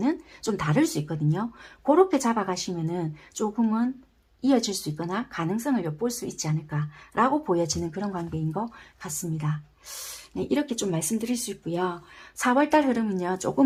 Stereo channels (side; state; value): both; identical; correlation 1.00